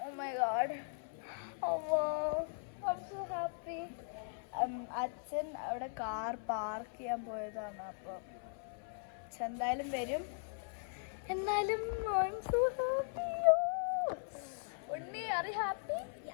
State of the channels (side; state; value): right; silent; 52 dB below the other